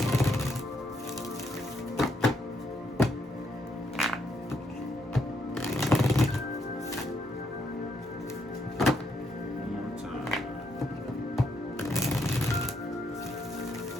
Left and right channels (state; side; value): normal; both; correlation 0.76